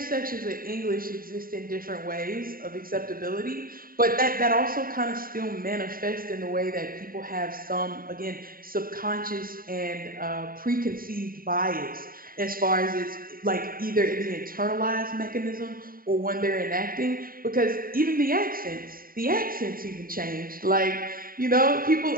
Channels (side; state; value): left; late; 0.42 ms